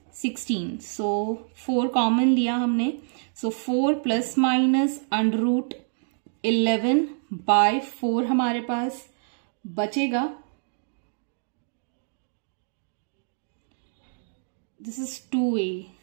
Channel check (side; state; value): left; silent; digital silence